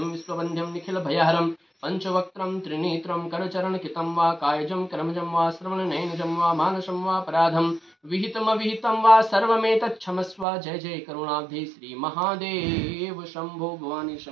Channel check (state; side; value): drops out; left; at 10.5 s